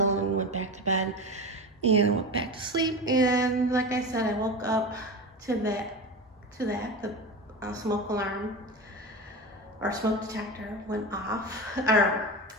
and went back to bed. And I went back to sleep, and like I said, I woke up to the smoke alarm or smoke detector went off, or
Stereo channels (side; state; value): both; normal; correlation 0.24